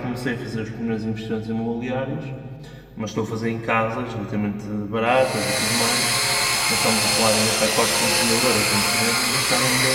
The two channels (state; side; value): identical; both; correlation 1.00